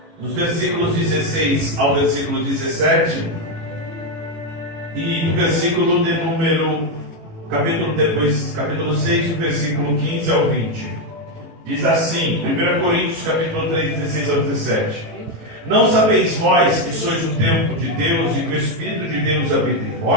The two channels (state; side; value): late; left; 18 ms